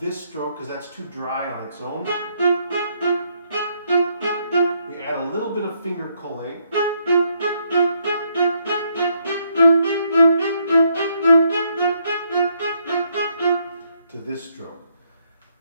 stroke because that's too dry on its own. We add a little bit of finger collé. To this stroke.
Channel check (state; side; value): inverted; both; correlation -0.73